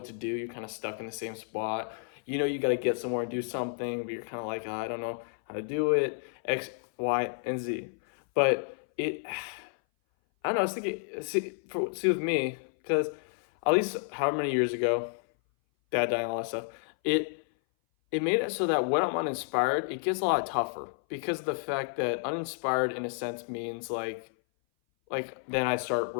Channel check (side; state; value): right; silent; 57 dB below the other